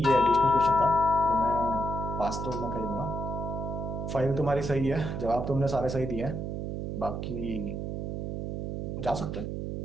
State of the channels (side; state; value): right; noise; hum, 4 dB below the sound